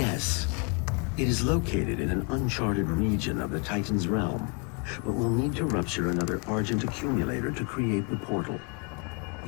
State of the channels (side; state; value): right; quieter; 33.3 dB